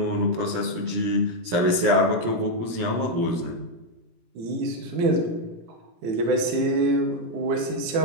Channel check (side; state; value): left; late; 17 ms